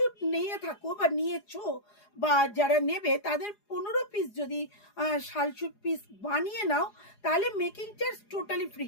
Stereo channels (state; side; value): late; right; 4.8 ms